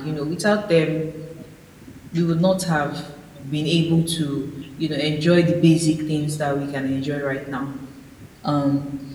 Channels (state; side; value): identical; both; correlation 1.00